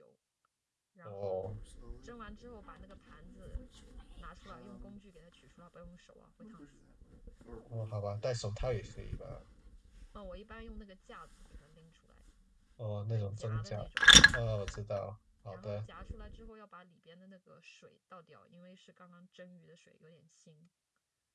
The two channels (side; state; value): both; identical; correlation 1.00